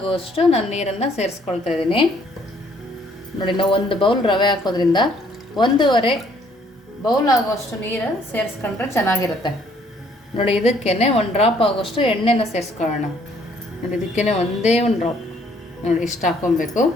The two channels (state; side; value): normal; both; correlation 0.63